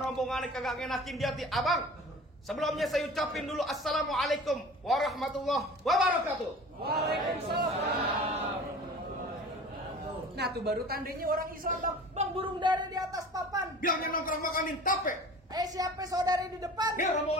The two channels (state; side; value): normal; both; correlation 0.41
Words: kagak ngenakin di hati. Abang, sebelumnya saya ucapin dulu assalamualaikum warahmatullahi wabarakatuh. Waalaikumsalam. Nah tuh baru tandanya orang Islam bang. Bang, burung dara di atas papan. Bilangnya nongkrong makanin tape. Siapa saudari di depan? Dia